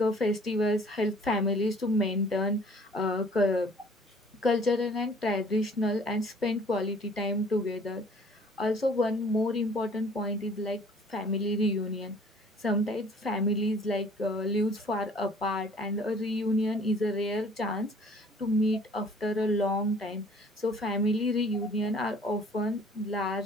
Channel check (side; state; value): both; normal; correlation 0.54